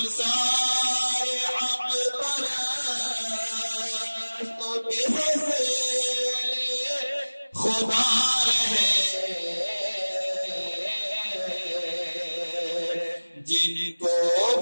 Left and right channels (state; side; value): inverted; both; correlation -1.00